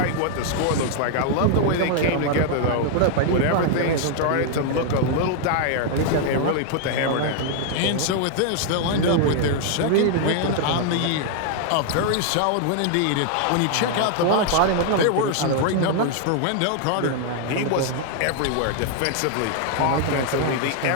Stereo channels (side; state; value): both; different; correlation 0.00